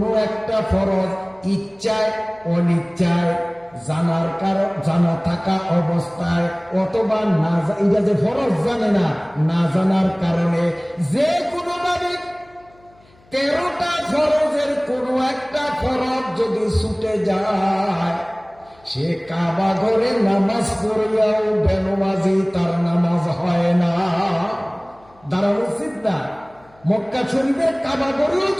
একটা ফরজ ইচ্ছায় অনিচ্ছায়, জানার কারণ, জানা থাকা অবস্থায় অথবা না, এটা যে ফরজ জানে না, না জানার কারণে যে কোনো ভাবে 13টা ফরজের কোনো একটা ফরজ যদি ছুটে যায়, সে কাবা ঘরে নামাজ পড়িয়াও বেনমাজি, তার নামাজ হয় না। দাঁড়ানো উচিত না। মক্কা শরীফের কাবা ঘরেও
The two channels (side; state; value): left; noise; hum, 30 dB below the sound